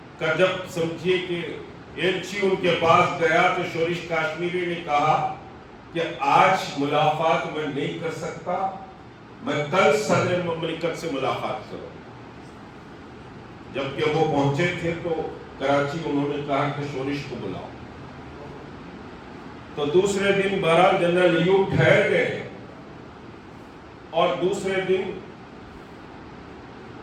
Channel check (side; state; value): both; identical; correlation 1.00